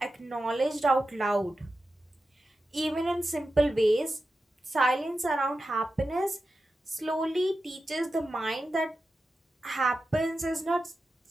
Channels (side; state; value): both; normal; correlation 0.91